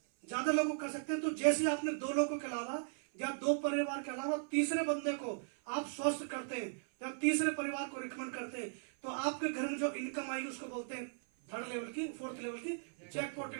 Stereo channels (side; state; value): left; silent; 53 dB below the other